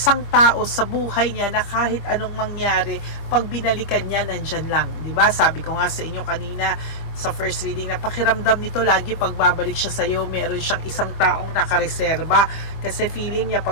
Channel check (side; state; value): right; late; 25 ms